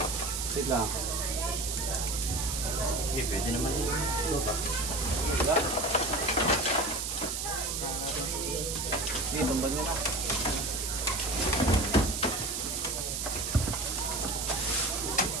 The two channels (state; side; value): noise; right; hiss, 2 dB below the sound